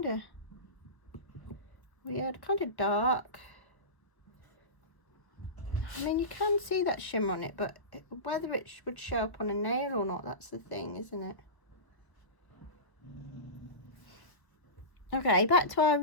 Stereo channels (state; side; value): late; right; 1.0 ms